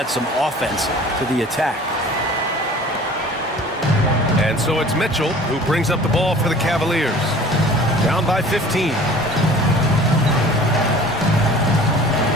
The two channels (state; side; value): normal; both; correlation 0.45